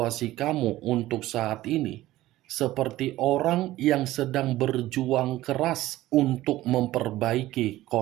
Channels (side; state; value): left; quieter; 16.1 dB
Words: kamu untuk saat ini seperti orang yang sedang berjuang keras untuk memperbaiki